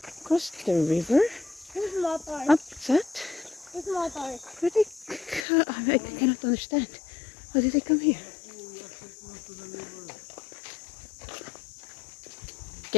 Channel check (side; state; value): right; drops out; at 5.5 s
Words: Cross the river? Who's motor? Up that? Who's motor? Where they... I cannot understand. How did they come here?